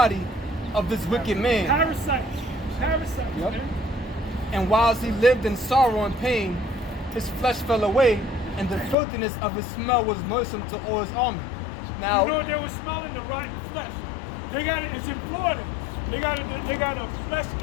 of this wicked man. Parasites. Yep. Man. And whilst he lived in sorrow and pain, his flesh fell away, and the filthiness of his smell was noisome to all his army. Now, You know they were smelling the rotten flesh. They got it. It's in Florida. They got a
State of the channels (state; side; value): drops out; right; at 9.0 s